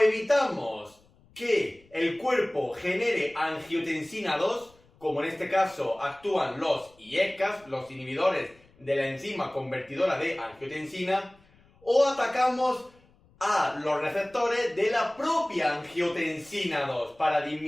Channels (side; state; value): left; noise; rumble, 30 dB below the sound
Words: que el cuerpo genere angiotensina 2, como en este caso actúan los IECAs, los inhibidores de la enzima convertidora de angiotensina, o atacamos a los receptores de la propia angiotensina 2 para